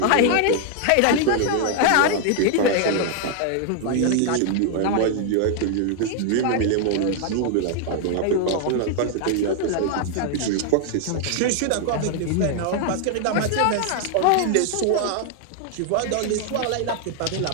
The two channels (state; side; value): different; both; correlation 0.00